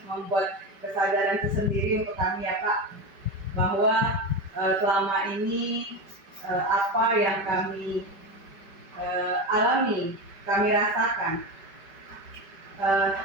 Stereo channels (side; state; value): left; late; 5.2 ms